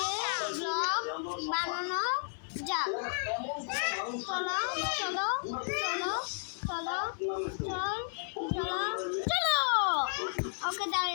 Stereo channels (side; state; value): right; silent; digital silence